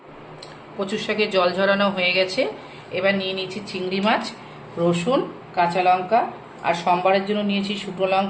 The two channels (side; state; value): both; identical; correlation 1.00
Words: কচুর শাকে জল ঝরানো হয়ে গেছে। এবার নিয়ে নিয়েছি চিংড়ি মাছ, রসুন, কাঁচা লঙ্কা আর সম্বারের জন্য নিয়েছি শুকনো